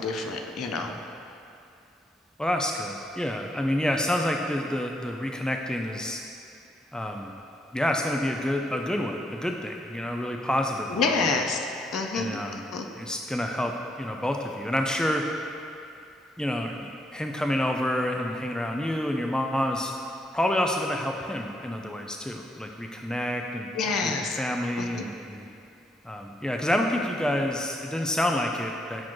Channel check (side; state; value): both; normal; correlation 0.75